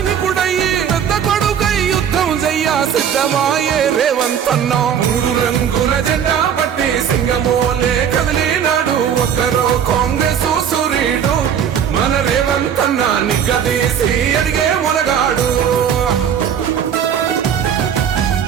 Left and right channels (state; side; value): quieter; left; 8.5 dB